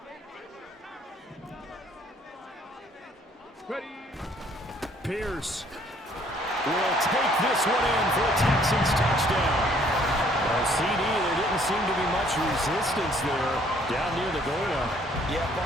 Ready. Pierce will take this one in for a Texans touchdown. Well, CD, there didn't seem to be much resistance there down near the goal line. Yeah,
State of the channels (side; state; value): both; normal; correlation 0.62